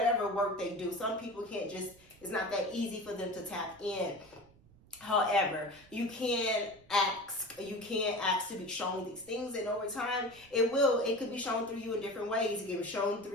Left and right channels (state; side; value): noise; right; rumble, 26 dB below the sound